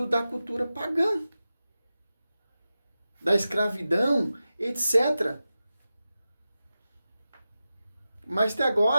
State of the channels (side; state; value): both; inverted; correlation -0.93